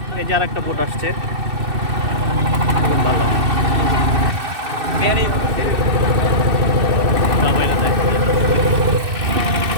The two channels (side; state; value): left; late; 2.6 ms